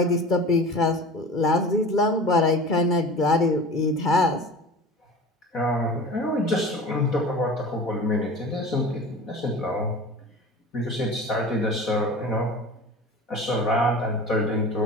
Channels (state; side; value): normal; both; correlation 0.36